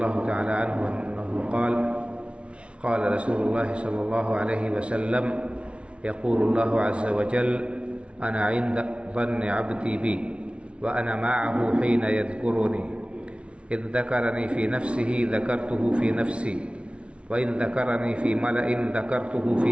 تعالى عنه أنه قال قال رسول الله صلى الله عليه وسلم يقول الله عز وجل أنا عند ظن عبدي بي وأنا معه حين يذكرني إذ ذكرني في نفسه ذكرته في نفسي وإن ذكرني في ملأ ذكرته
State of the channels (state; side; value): late; left; 0.060 ms